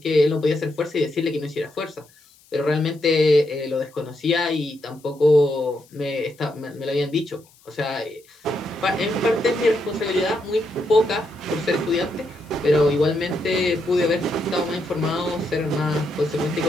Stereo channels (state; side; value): noise; left; hiss, 29 dB below the sound